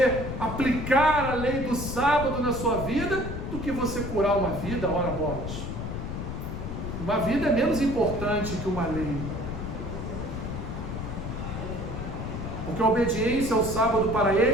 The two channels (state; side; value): noise; left; rumble, 5 dB below the sound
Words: aplicar a lei do sábado na sua vida, do que você curar uma vida, ora bolas. Uma vida é menos importante que uma lei. Porque a obediência ao sábado para